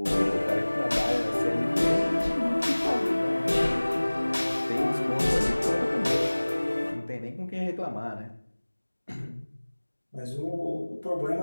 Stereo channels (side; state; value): both; inverted; correlation -1.00